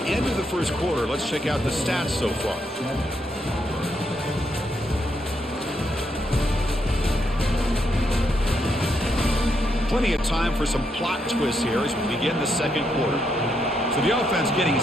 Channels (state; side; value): normal; both; correlation 0.78